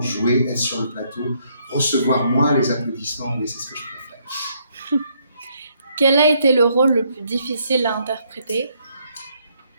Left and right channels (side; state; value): both; inverted; correlation -0.71